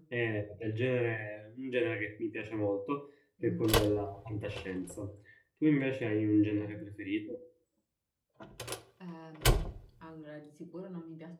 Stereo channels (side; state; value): both; identical; correlation 1.00